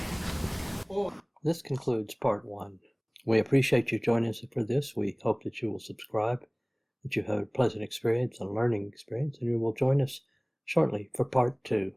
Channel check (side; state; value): both; identical; correlation 1.00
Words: or This concludes part 1. We appreciate you joining us for this. We hope that you will subscribe, that you have a pleasant experience, a learning experience, and you will join us shortly for part 2.